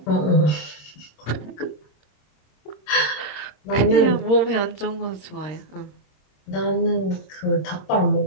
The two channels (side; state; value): right; late; 26 ms